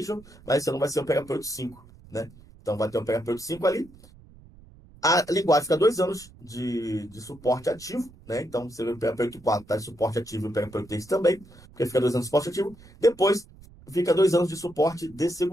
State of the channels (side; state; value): right; noise; rumble, 23 dB below the sound